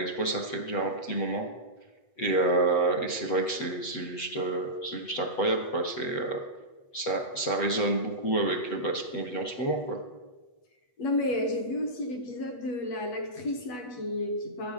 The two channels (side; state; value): right; late; 8.1 ms